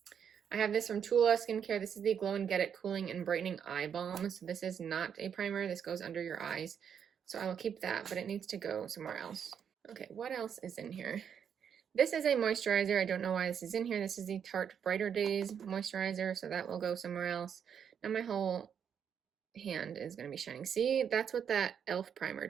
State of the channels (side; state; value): left; quieter; 7.9 dB